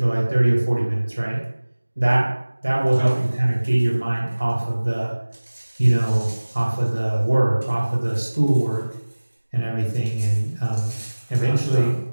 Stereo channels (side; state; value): both; inverted; correlation -1.00